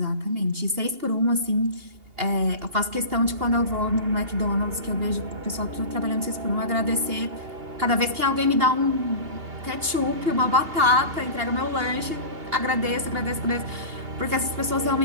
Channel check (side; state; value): left; late; 2.8 ms